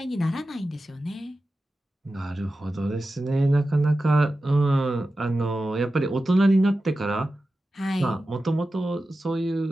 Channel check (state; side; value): normal; both; correlation 0.93